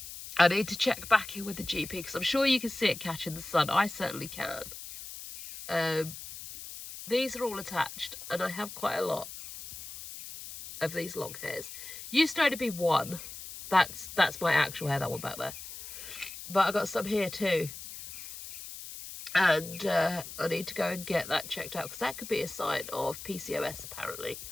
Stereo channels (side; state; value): left; noise; hiss, 11 dB below the sound